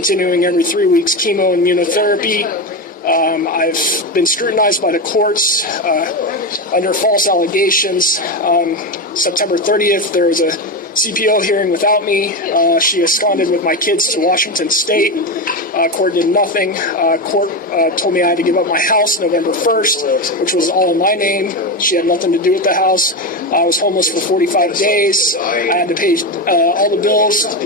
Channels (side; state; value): both; normal; correlation 0.15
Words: every 3 weeks, chemo and immunotherapy. I've been scrutinized by the courts under false allegations. September 30th, there was a CPO hearing without me. She absconded with my kids to Washington State. Court did nothing. Court told me I had to give up my house November 1st, which was all in my name. She had nothing to do with the house. I was homeless for 45 days. I had to pay all the bills, the